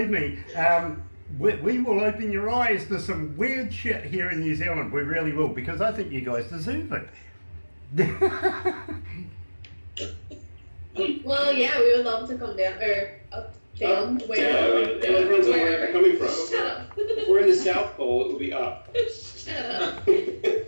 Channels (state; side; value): inverted; both; correlation -1.00